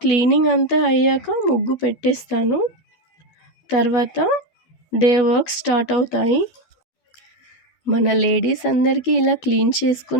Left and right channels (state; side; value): late; right; 12 ms